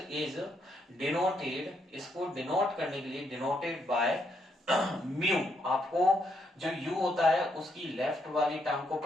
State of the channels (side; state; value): both; normal; correlation 0.75